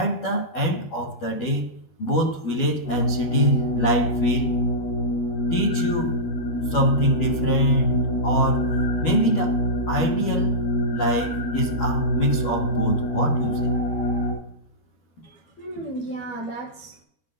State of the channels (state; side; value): late; right; 12 ms